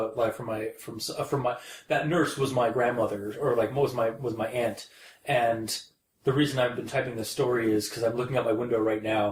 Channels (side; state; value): both; identical; correlation 1.00